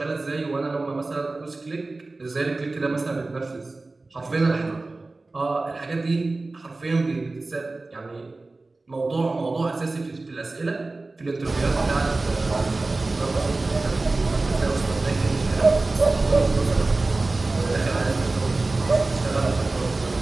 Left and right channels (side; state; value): left; quieter; 3.3 dB